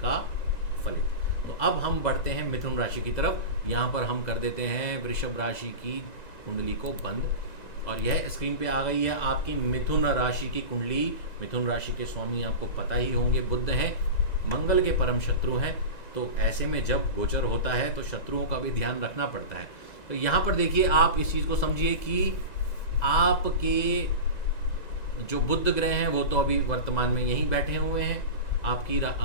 का फलित। तो अब हम बढ़ते हैं मिथुन राशि की तरफ। यहाँ पर हम कर देते हैं वृषभ राशि की कुंडली को बंद, और यह स्क्रीन पे आ गई है आपकी मिथुन राशि की कुंडली। मिथुन राशि के स्वामी आपको पता ही होंगे, बुध हैं, मंगल के परम शत्रु हैं। तो ऐसे में जब गोचर होता है तो शत्रुओं का भी ध्यान रखना पड़ता है। तो यहाँ पर देखिए, आप इस चीज़ को समझिए कि आपके जो बुध ग्रह हैं वो तो अभी वर्तमान में यहीं बैठे हुए हैं। आपकी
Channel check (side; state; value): right; late; 1.9 ms